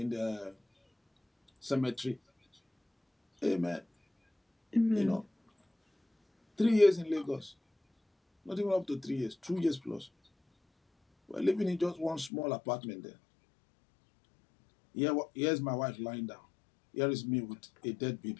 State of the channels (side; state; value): right; drops out; at 12.3 s